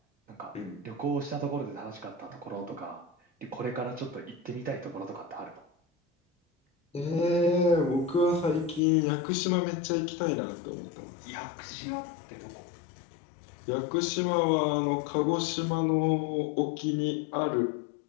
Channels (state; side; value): drops out; right; at 8.8 s